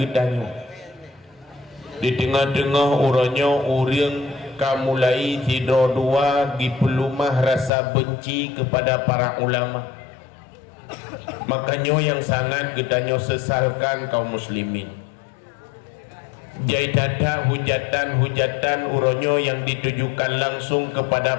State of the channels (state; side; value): drops out; right; at 7.7 s